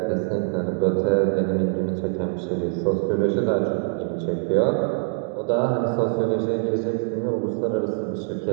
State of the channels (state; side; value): silent; left; digital silence